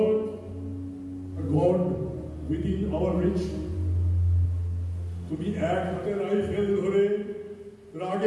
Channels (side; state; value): both; identical; correlation 1.00